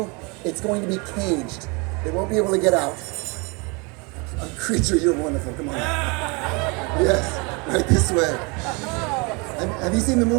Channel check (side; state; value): left; quieter; 29.9 dB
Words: it's going to be caged. It won't be able to get out. A creature, you're wonderful, come on. Yes, right this way. Have you seen the